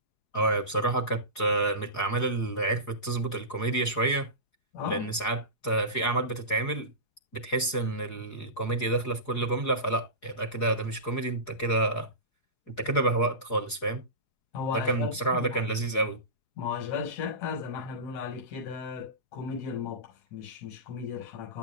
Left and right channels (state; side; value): late; right; 4.8 ms